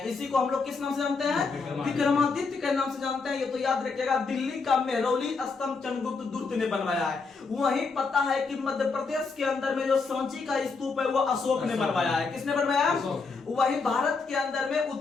इसी को हम लोग किस नाम से जानते हैं? विक्रमादित्य के नाम से जानते हैं। ये तो याद रखिएगा, दिल्ली का मेहरौली स्तंभ चंद्रगुप्त दूर्त ने बनवाया है। वहीं पता है कि मध्य प्रदेश के अंदर में जो सांची का स्तूप है वो अशोक ने बनवाया है। किसने बनवाया है? वहीं भारत के अंदर में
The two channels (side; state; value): right; quieter; 4.5 dB